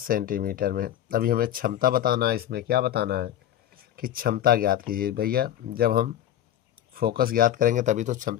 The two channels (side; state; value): right; quieter; 11.5 dB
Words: में। अभी हमें क्षमता बताना है, इसमें क्या बताना है कि क्षमता ज्ञात कीजिए। भैया जब हम फोकस ज्ञात करेंगे तभी तो